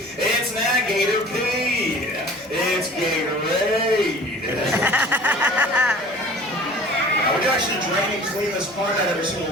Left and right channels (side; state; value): both; normal; correlation 0.45